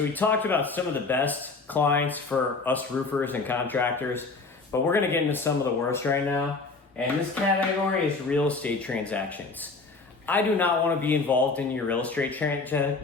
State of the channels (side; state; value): right; quieter; 3.9 dB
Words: we talked about some of the best clients for us roofers and contractors, but we're gonna get into some of the worst right now. And this category is real estate transactions. I do not wanna be involved in your real estate